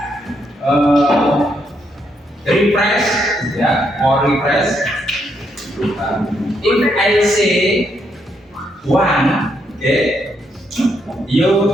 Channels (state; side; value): normal; both; correlation 0.76